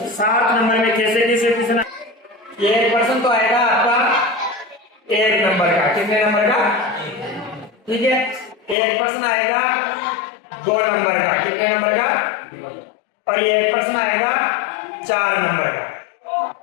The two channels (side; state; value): right; drops out; at 8.8 s